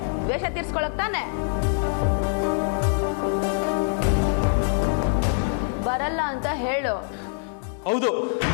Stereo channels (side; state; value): right; silent; digital silence